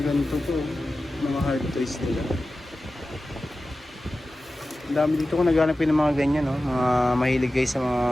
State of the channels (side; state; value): both; normal; correlation 0.95